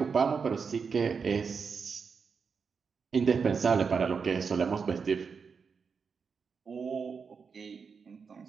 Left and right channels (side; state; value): left; quieter; 5.7 dB